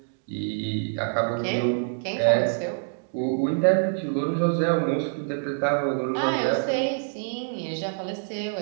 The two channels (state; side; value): silent; left; digital silence